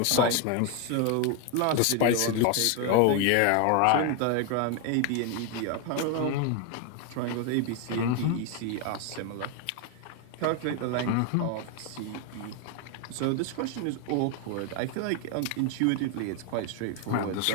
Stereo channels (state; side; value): different; both; correlation 0.01